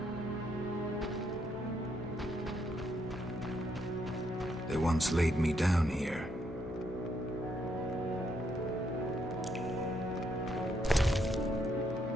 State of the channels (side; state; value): both; normal; correlation 0.75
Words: They once laid me down here.